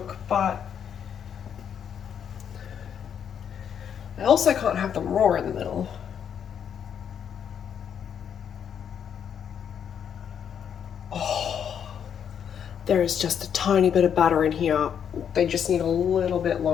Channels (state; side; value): quieter; right; 8.2 dB